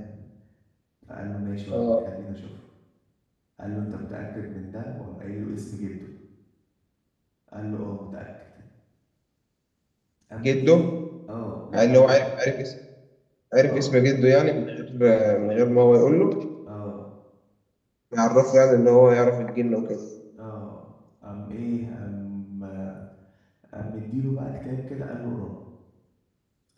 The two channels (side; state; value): both; identical; correlation 1.00